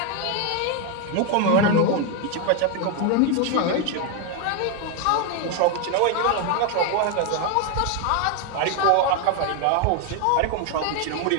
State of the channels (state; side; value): different; both; correlation 0.01